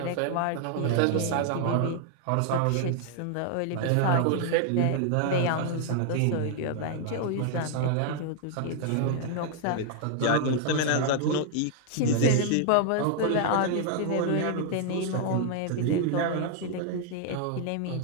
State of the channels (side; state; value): both; different; correlation 0.00